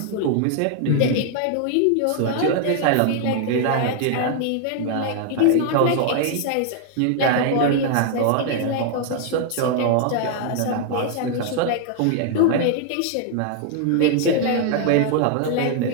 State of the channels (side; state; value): both; different; correlation 0.00